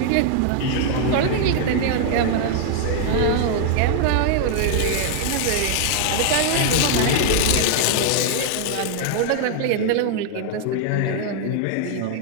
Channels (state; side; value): different; both; correlation 0.00